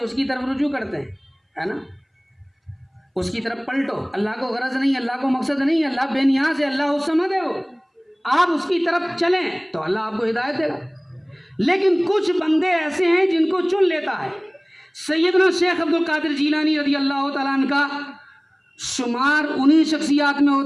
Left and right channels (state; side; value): identical; both; correlation 1.00